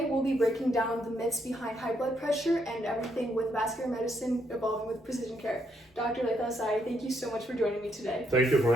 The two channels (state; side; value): normal; both; correlation 0.75